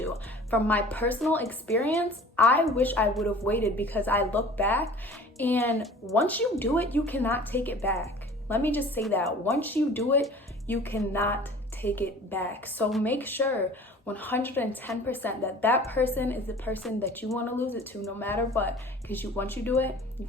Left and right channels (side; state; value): both; normal; correlation 0.45